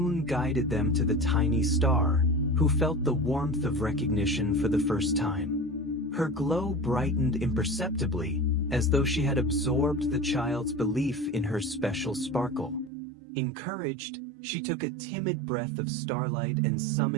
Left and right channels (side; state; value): left; drops out; at 12.9 s